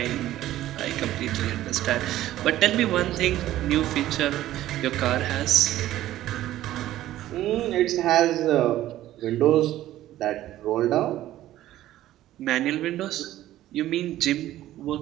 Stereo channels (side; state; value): left; quieter; 14.1 dB